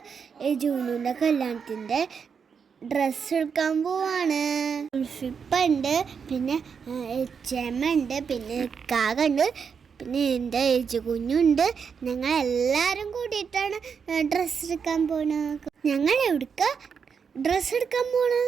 ജൂനുവിൻ്റെ കല്യാണത്തിൻ്റെ ഡ്രസ്സ് എടുക്കാൻ പോവാണ്. ഉൾഫിപ്പുണ്ട്, പിന്നെ എച്ചമ്മ ഉണ്ട്, പിന്നെ കാകുണ്ട്, പിന്നെ എൻ്റെ ഏജ് കുഞ്ഞുണ്ട്. ഞങ്ങൾ എല്ലാവരും കൂടിയിട്ടാണ് ഡ്രസ്സ് എടുക്കാൻ പോകുന്നത്. ഞങ്ങൾ എവിടേക്ക് ഡ്രസ്സ് എടുക്കാൻ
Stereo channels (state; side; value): quieter; left; 6.4 dB